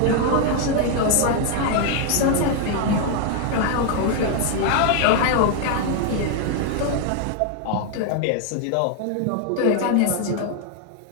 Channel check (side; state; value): both; different; correlation 0.00